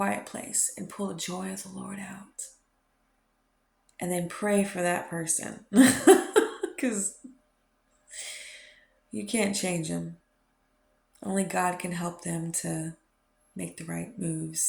place and pull the joy of the Lord out. And then pray for that person. Because you can't change them. Only God can help them to make the right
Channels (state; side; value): identical; both; correlation 1.00